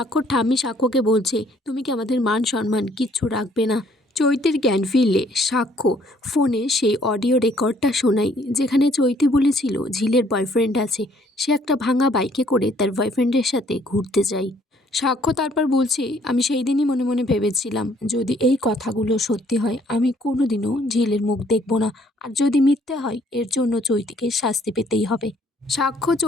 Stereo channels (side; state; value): both; normal; correlation 0.63